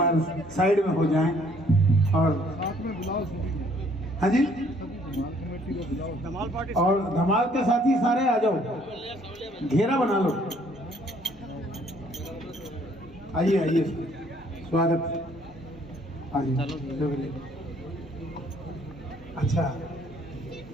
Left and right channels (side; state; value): both; normal; correlation 0.62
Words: साइड में हो जाए। और हाँ जी, और धमाल के साथी सारे आ जाओ, घेरा बना लो। आइए आइए, स्वागत। अच्छा,